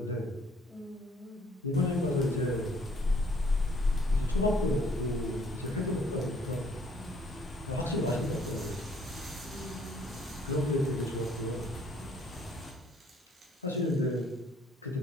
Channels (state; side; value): normal; both; correlation 0.62